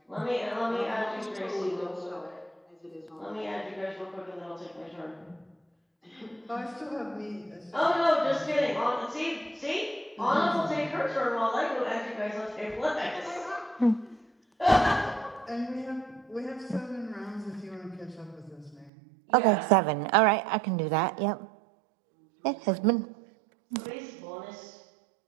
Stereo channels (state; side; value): drops out; left; at 18.9 s